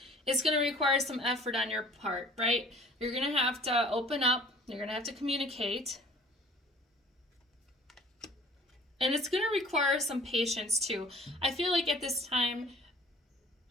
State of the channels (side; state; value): both; normal; correlation 0.50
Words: it's going to require some effort on your part, right? You're going to have to open up. You're going to have to communicate. And it's going to require some patience too. I feel like at this time,